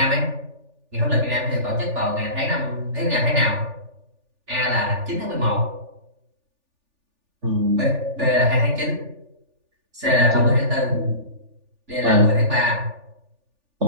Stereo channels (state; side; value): late; left; 3.4 ms